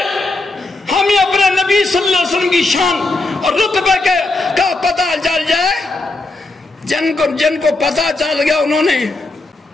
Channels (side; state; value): right; quieter; 3.0 dB